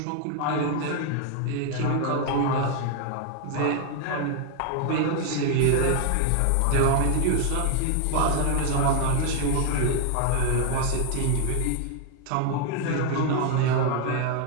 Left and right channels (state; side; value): different; both; correlation 0.00